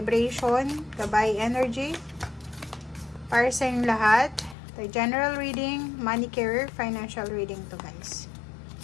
gabay energy para sa inyong lahat. The general reading, money career, financial reading to guys.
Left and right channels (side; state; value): right; drops out; at 4.5 s